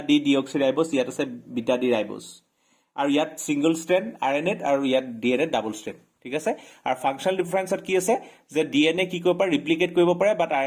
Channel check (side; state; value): both; identical; correlation 1.00